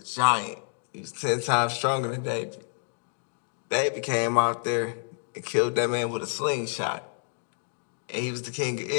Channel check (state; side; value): silent; right; digital silence